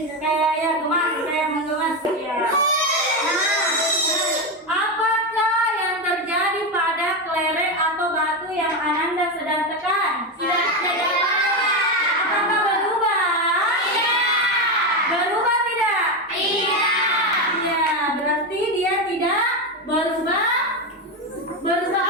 kayak ya gemas, kayak menggemas ya. Nah, apakah yang terjadi pada kelereng atau batu yang Ananda sedang tekan? Apakah berubah? Berubah tidak? Iya, berarti dia tidak berubah. Berubah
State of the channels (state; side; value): normal; both; correlation 0.12